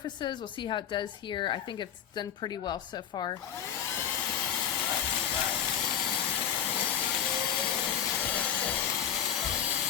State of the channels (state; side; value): quieter; right; 9.2 dB